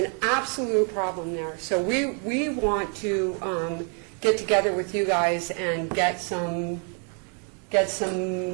absolute problem there. So we want to get together with you guys and get some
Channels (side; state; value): left; quieter; 40.0 dB